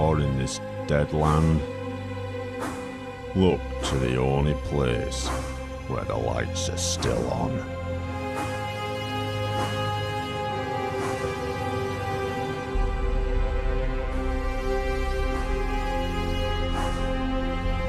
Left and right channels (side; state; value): both; identical; correlation 1.00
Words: in this dead land? Look to the only place where the lights are still on.